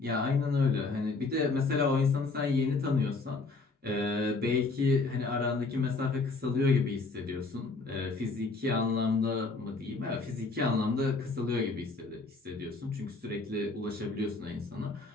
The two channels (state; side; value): quieter; right; 3.8 dB